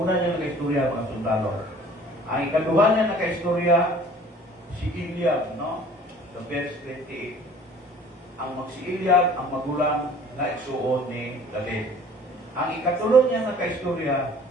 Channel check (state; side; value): normal; both; correlation 0.51